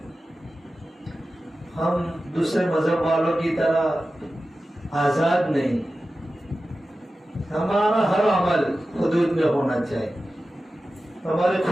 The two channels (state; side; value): normal; both; correlation 0.94